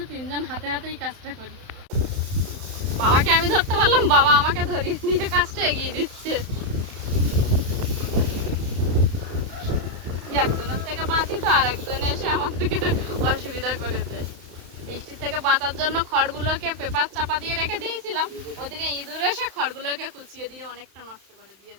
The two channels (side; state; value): left; late; 31 ms